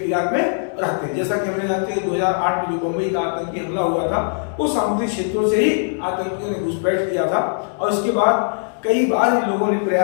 में रहते हैं। जैसा कि हमने जानते हैं 2008 में जो बम्बई का आतंकी हमला हुआ था, वो सामुद्रिक क्षेत्रों से ही आतंकियों ने घुसपैठ किया था, और इसके बाद कई बार इन लोगों ने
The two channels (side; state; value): right; silent; digital silence